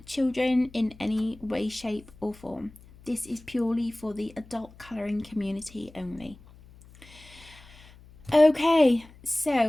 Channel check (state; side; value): noise; left; hum, 23 dB below the sound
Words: children in any way, shape or form. This is purely for the adult colouring community only. Okay,